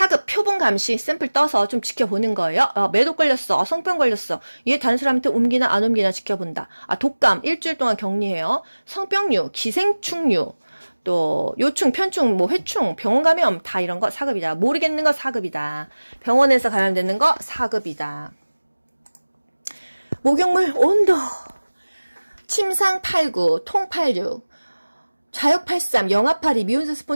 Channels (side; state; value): both; inverted; correlation -1.00